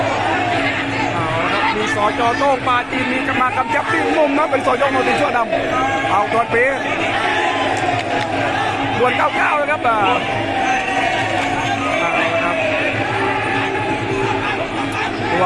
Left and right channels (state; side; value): identical; both; correlation 1.00